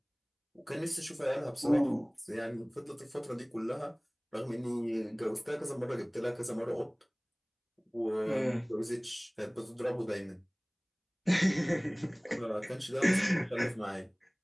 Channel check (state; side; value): identical; both; correlation 1.00